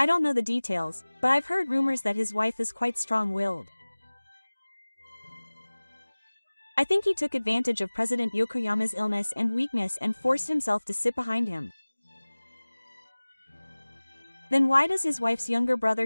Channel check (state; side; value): inverted; both; correlation -1.00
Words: don't know the details, but I've heard rumors that his wife is quite strong-willed. I think he took advantage of President Yokoyama's illness and weakness and forced himself to sit behind him. Then why does his wife's younger brother